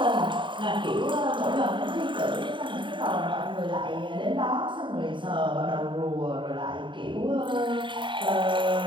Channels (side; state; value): left; late; 0.23 ms